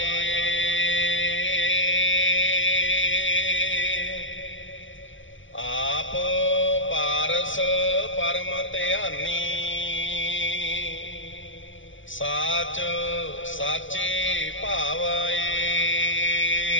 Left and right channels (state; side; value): late; right; 0.56 ms